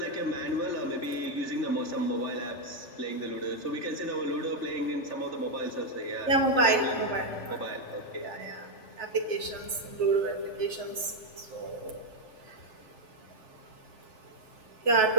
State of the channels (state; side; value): late; right; 3.4 ms